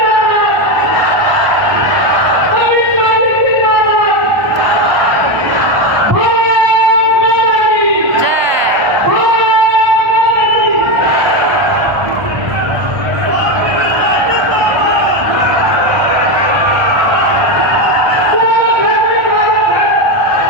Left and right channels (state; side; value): late; left; 1.2 ms